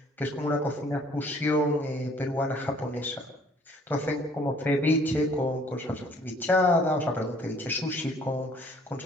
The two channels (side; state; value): both; normal; correlation 0.58